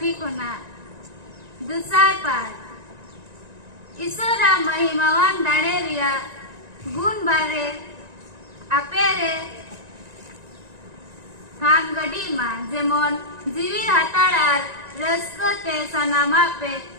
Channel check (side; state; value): left; late; 1.9 ms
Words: कोना दुसार पाठ ईश्वरा महिमावान दाणे रिया गुण बारे आपेरे थाम गडी मा जेमन जीवी हाताड़ार रस्कते सनामा पे